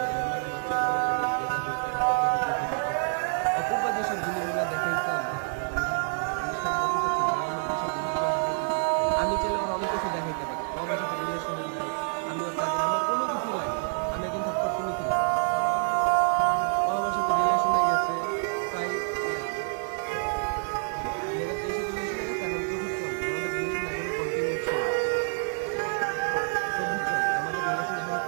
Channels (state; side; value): silent; left; digital silence